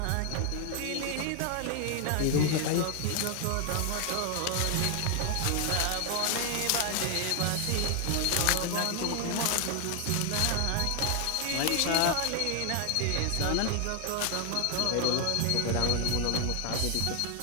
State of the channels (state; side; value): different; both; correlation 0.00